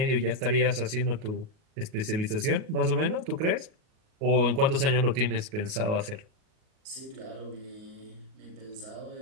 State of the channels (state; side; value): late; left; 38 ms